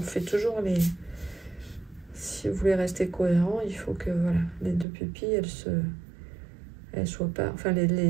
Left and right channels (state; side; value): drops out; left; at 4.9 s